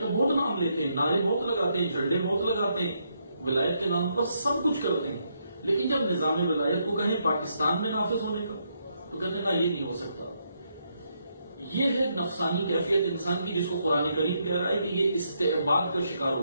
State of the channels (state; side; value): inverted; both; correlation -0.77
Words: بہت نام لیتے ہیں، نعرے بہت لگاتے ہیں، جھنڈے بہت لگاتے ہیں، ولایت کے نام پر سب کچھ کرتے ہیں، لیکن جب نظام ولایت کو کہیں پاکستان میں نافذ ہونے کا تو کہتے ہیں نا یہ نہیں ہو سکتا. یہ ہے نفسانی کیفیت انسان کی، جس کو قرآن کریم کہہ رہا ہے کہ یہ استعباد کا شکار